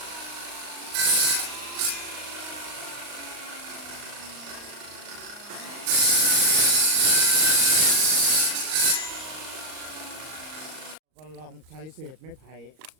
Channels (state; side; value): late; left; 39 ms